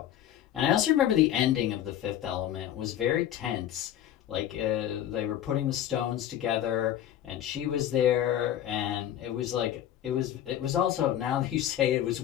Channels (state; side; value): quieter; right; 11.3 dB